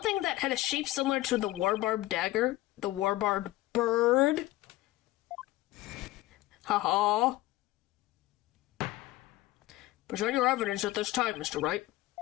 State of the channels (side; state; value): right; quieter; 17.4 dB